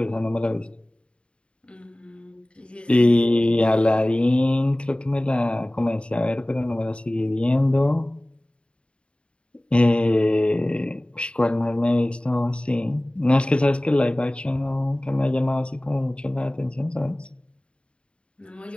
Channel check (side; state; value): right; late; 0.056 ms